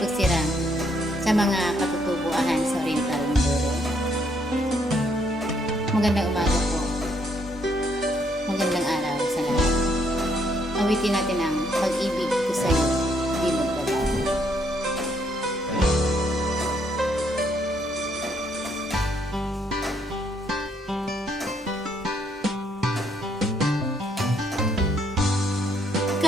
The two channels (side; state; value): both; normal; correlation 0.71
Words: pagsira sa mga katutubuan sa Oriental Mindoro. Magandang umaga po. Magandang araw sa lahat. Awitin natin ang pag-ibig ko sa'yo, di magbabago.